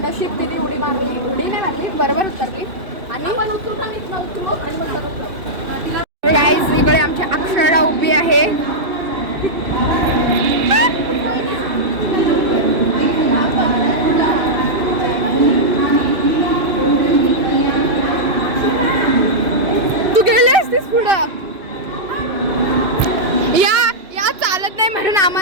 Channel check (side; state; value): left; late; 2.6 ms